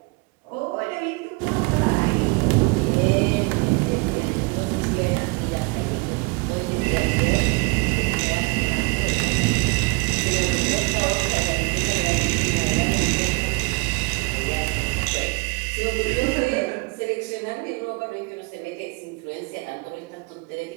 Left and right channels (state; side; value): quieter; left; 27.7 dB